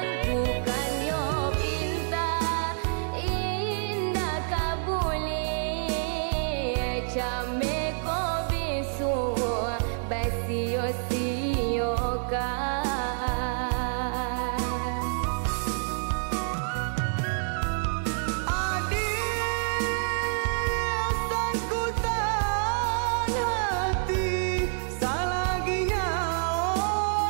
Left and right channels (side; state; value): left; silent; 60 dB below the other